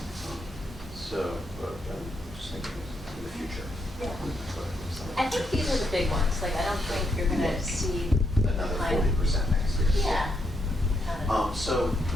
So, I'm just thinking in the future. Yeah. I think these are the big ones. Like, I don't think you're going to see Another kind of- 40% next year. Yeah. Kind of. So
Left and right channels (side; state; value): both; normal; correlation 0.78